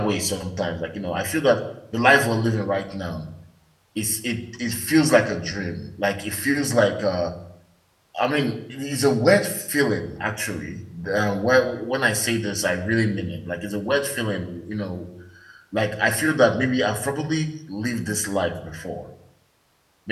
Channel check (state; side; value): identical; both; correlation 1.00